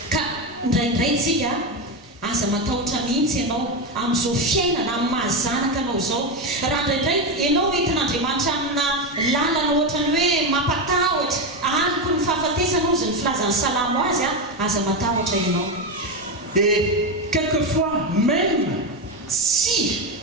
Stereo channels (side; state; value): both; normal; correlation 0.12